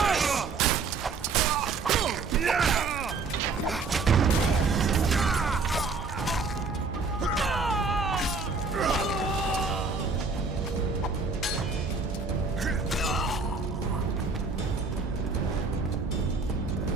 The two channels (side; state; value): left; quieter; 4.3 dB